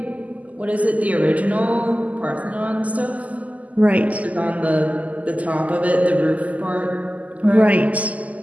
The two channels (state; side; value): late; left; 0.073 ms